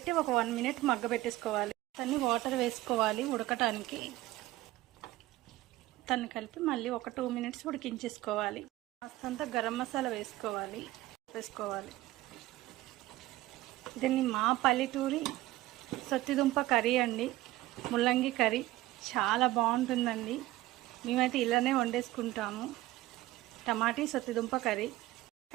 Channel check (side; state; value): left; quieter; 17.1 dB